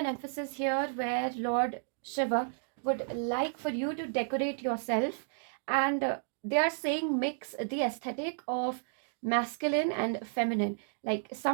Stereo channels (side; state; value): left; silent; digital silence